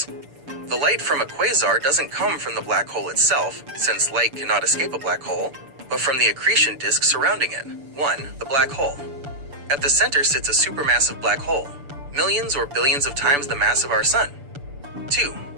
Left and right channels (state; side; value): late; left; 6.9 ms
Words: The light from a quasar doesn't come from the black hole itself, since light cannot escape a black hole, but from the accretion disk surrounding it. 1. The black hole. At the center sits a supermassive black hole, millions or billions of times the mass of our sun. 2.